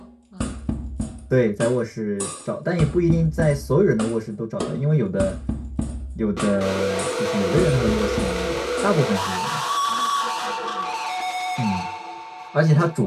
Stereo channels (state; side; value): identical; both; correlation 1.00